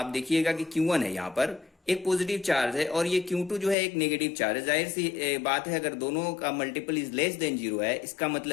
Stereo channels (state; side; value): drops out; right; at 3.8 s